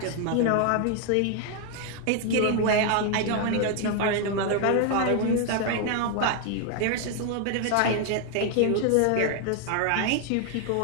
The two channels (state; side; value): different; both; correlation 0.01